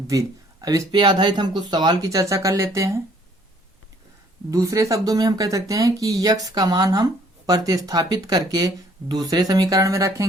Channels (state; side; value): normal; both; correlation 0.61